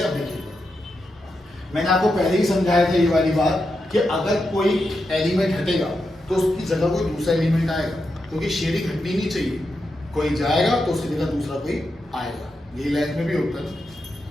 अब देखिए, मैंने आपको पहले ही समझाया था ये वाली बात कि अगर कोई एलिमेंट हटेगा तो उसकी जगह कोई दूसरा एलिमेंट आएगा, क्योंकि शेयरिंग हटनी नहीं चाहिए, कोई जाएगा तो उसकी जगह दूसरा कोई आएगा, यही लाइफ में भी होता है,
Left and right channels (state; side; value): normal; both; correlation 0.86